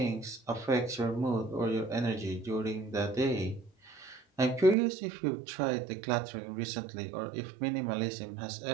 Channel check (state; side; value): drops out; left; at 4.8 s